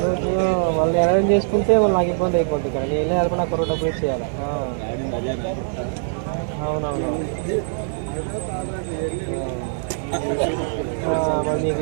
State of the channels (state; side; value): silent; left; digital silence